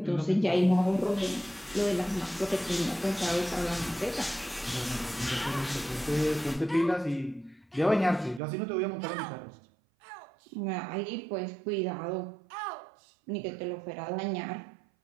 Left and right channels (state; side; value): drops out; left; at 8.4 s